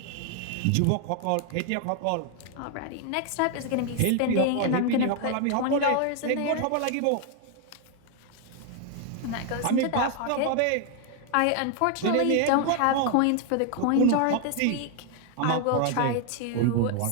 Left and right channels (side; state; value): both; different; correlation 0.00